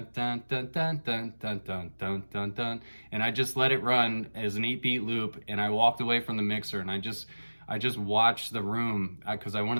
dun dun dun dun dun dun dun dun dun, and I just let it run as an 8-beat loop, and I walked away from the mixer, and I just watched the room because I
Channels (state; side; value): inverted; both; correlation -1.00